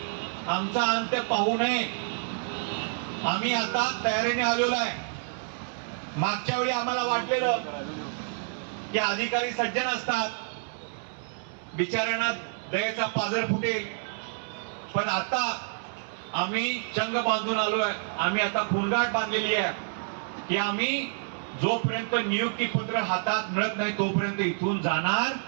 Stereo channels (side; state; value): left; silent; 59 dB below the other